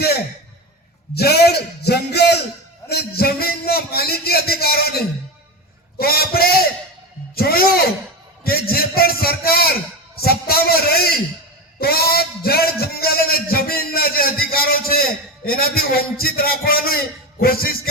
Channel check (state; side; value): normal; both; correlation 0.19